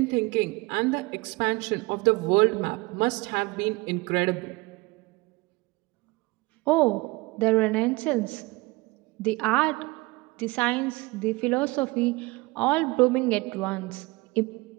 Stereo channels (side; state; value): left; quieter; 23.3 dB